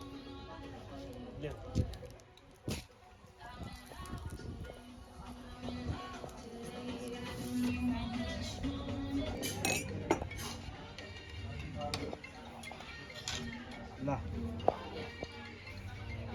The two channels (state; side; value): identical; both; correlation 1.00